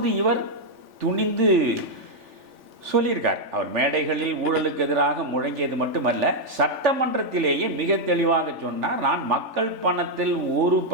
இவர் துணிந்து சொல்லியிருக்கார். அவர் மேடைகளில் ஊழலுக்கு எதிராக முழங்கியது மட்டுமல்ல, சட்டமன்றத்திலேயே மிக தெளிவாக சொன்னார், நான் மக்கள் பணத்தில் ஒரு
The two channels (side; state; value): left; late; 3.4 ms